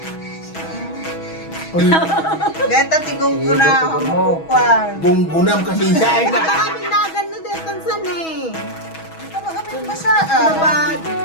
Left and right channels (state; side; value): late; right; 6.2 ms